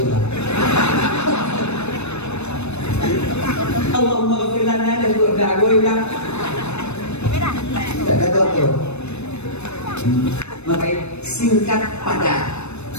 Allahumma ghafir lana dan doa gue bilang tak tahu tu. Maka singkat padat.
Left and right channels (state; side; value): late; right; 0.81 ms